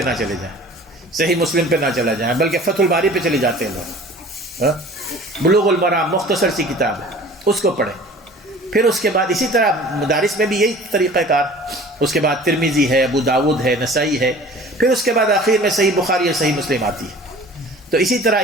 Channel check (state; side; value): normal; both; correlation 0.44